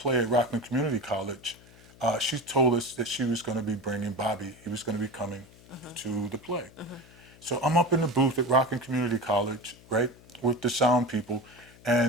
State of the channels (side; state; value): left; noise; hum, 24 dB below the sound